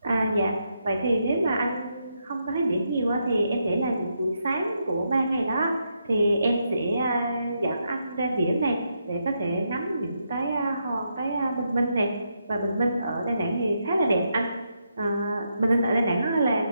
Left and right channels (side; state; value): both; inverted; correlation -0.81